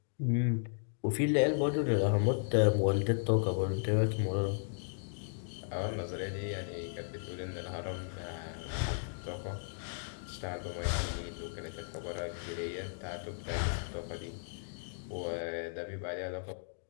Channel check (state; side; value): silent; right; digital silence